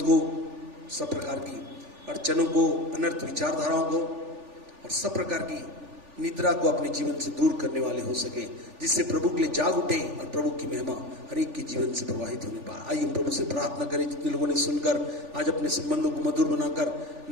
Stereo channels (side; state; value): left; late; 3.4 ms